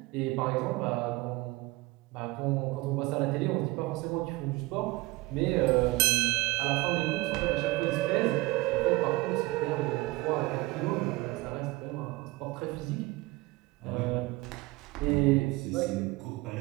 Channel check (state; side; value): quieter; left; 21.6 dB